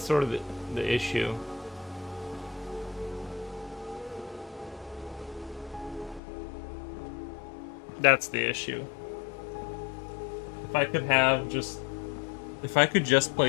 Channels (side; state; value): right; drops out; at 6.2 s